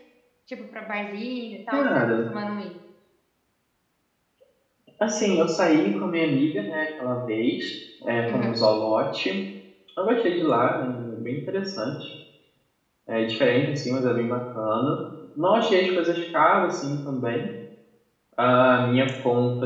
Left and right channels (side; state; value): both; identical; correlation 1.00